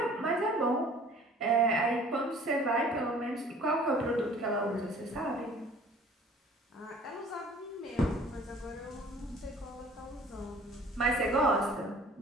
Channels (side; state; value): both; normal; correlation 0.50